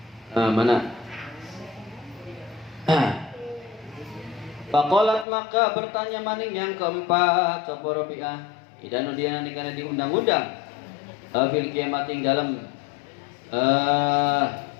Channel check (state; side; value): drops out; right; at 5.2 s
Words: Mana? Faqalat maka bertanya maning yang keempat sapa Robiah. Idanu dia nanti karena diundang-undang fil kiamat ing dalam